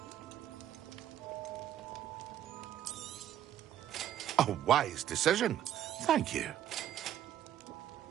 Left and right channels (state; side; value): quieter; left; 11.1 dB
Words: A wise decision. Thank you.